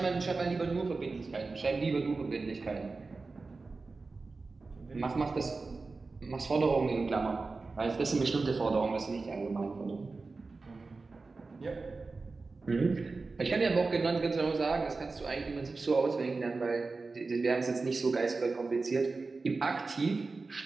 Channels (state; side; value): quieter; left; 3.9 dB